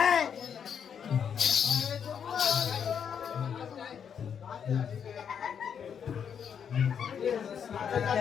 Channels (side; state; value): right; quieter; 7.6 dB